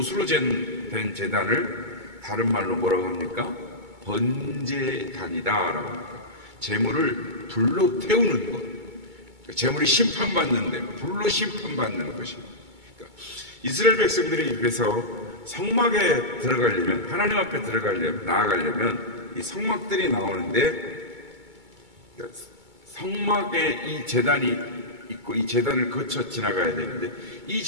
된 제단을 다른 말로 뭐라고 합니까? 번제단이다라고 합니다. 재물을 불로 태우는 것. 재물이 심판받는데 불로 심판받는 것입니다. 그러니까 이스라엘 백성들이 그래서 성막에 들어가려면, 하나님 앞에 나아가려면 이 성막들이 나오는데 성막에 이 제단이 있고 이 제단을 거쳐 지나가야 되는데 이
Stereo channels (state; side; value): late; left; 2.2 ms